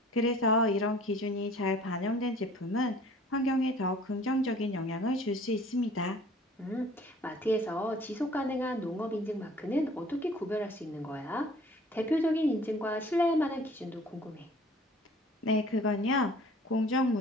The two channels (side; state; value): both; normal; correlation 0.51